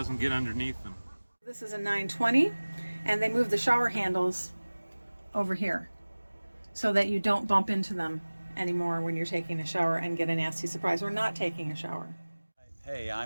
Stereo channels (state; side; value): inverted; both; correlation -1.00